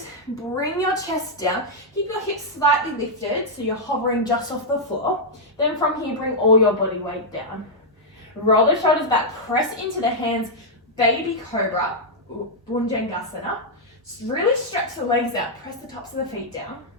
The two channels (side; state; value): both; normal; correlation -0.05